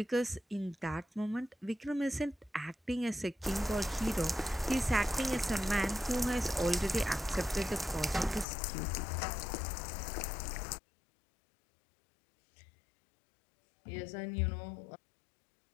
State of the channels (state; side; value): drops out; right; at 8.5 s